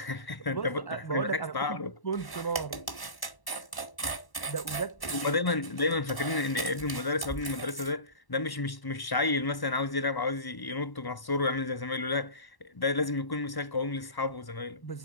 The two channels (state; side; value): late; right; 1.1 ms